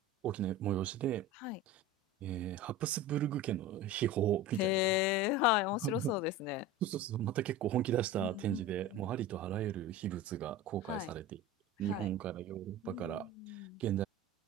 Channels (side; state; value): both; normal; correlation 0.31